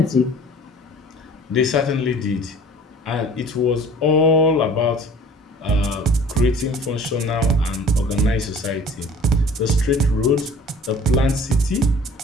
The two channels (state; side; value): normal; both; correlation 0.47